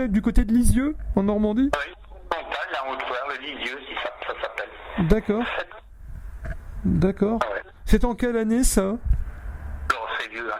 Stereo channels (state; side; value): identical; both; correlation 1.00